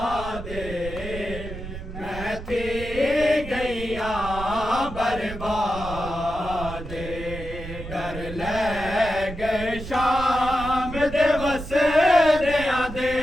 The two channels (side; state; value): right; noise; rumble, 10 dB below the sound